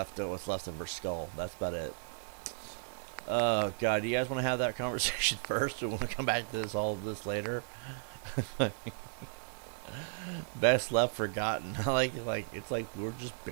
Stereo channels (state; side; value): silent; left; digital silence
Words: what's left of her skull. That's about it. Oh god, do you guys want to have that conversation first, or want to come back to all of this later? Best left forgotten. like it's like we're just